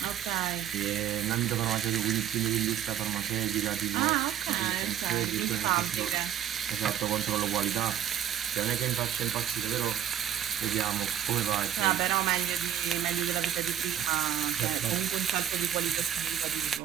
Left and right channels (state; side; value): quieter; left; 10.3 dB